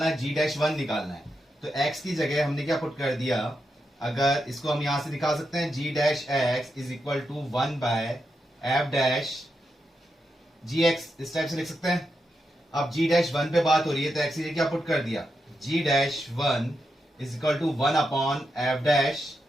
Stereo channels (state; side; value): normal; both; correlation 0.86